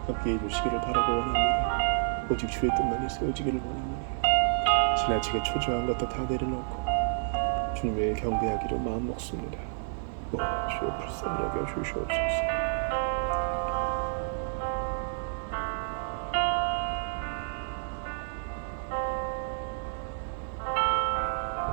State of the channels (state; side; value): silent; left; digital silence